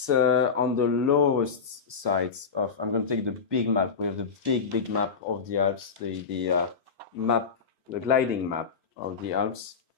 on the lowest sides of. I'm going to take the big map. We have the big map of the Alps, the map, the gliding map of the Alps,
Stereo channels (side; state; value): right; quieter; 5.6 dB